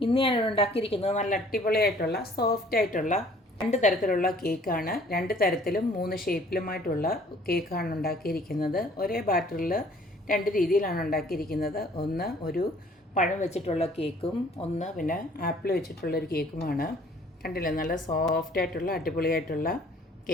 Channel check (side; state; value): both; normal; correlation 0.56